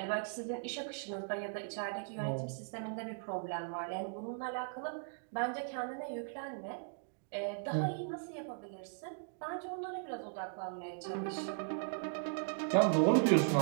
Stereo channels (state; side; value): silent; left; digital silence